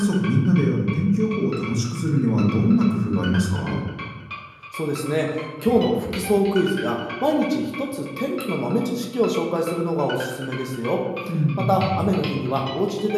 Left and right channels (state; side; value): identical; both; correlation 1.00